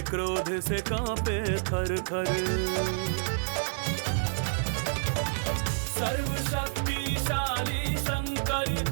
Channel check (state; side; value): silent; left; 59 dB below the other